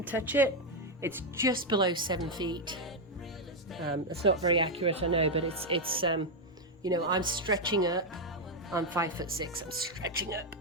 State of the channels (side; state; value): both; normal; correlation 0.02